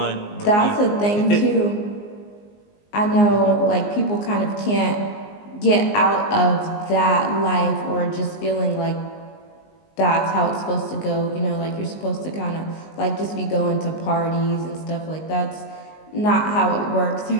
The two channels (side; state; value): right; late; 19 ms